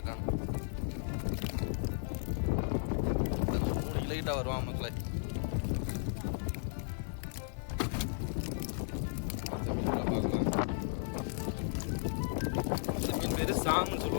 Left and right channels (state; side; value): silent; right; digital silence